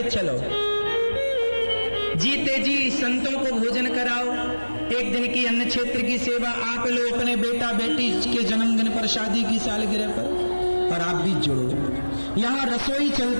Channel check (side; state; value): both; inverted; correlation -1.00